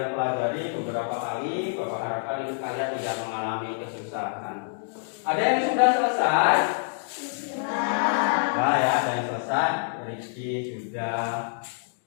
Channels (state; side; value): silent; right; digital silence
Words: pelajari beberapa kali. Bapak harapkan ini kalian tidak mengalami kesusahan. Ada yang sudah selesai? Sudah ya, ada yang selesai. Rizky sudah